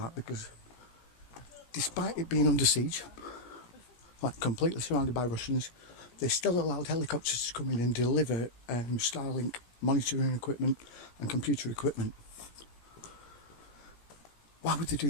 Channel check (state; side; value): late; right; 17 ms